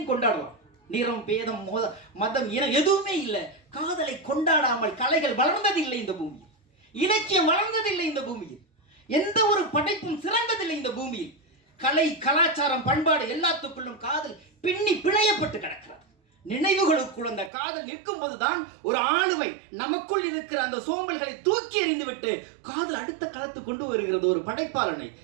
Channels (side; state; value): left; drops out; at 17.5 s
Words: கொண்டாடலாம். நிறம் பேதம் மதம் இனம் எதுவுமே இல்லை. காதலை கொண்டாடாமல் கலைகள் வளர்ந்ததில்லை இந்த பூமியில், இலக்கியம் வளர்ந்ததில்லை இந்த பூமியில், எந்த ஒரு படைப்பும் சிறந்ததில்லை இந்த பூமியில். கலை கலாச்சாரம் பண்பாடு எல்லாத்துக்குள்ளும் காதல் பின்னி பிணையப்பட்டு கிடக்கிறது. நினைவுகளுக்குள் அந்த காதல் நிற்கும் போதுதான் ஒரு ஆளுமை நமக்குள் இருக்கிற அந்த சோம்பல்களை தூக்கி எறிந்துவிட்டு காதல் அடுத்த களத்து கொண்டு வருகிறது ஒரு படைப்பாளனை.